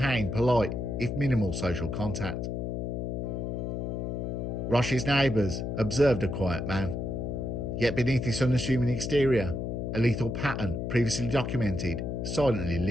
polite, if minimal, social contact. Roche's neighbours observed a quiet man, yet beneath his unassuming exterior, a lethal pattern previously documented silently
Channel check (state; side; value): noise; left; hum, 3 dB below the sound